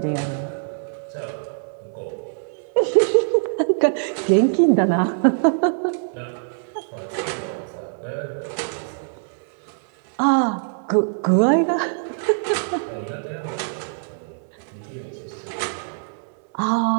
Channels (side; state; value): left; silent; 63 dB below the other